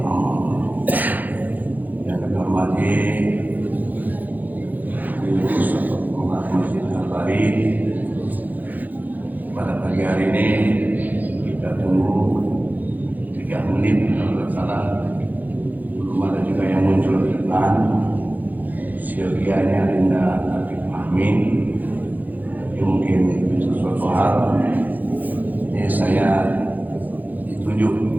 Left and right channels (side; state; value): left; late; 0.083 ms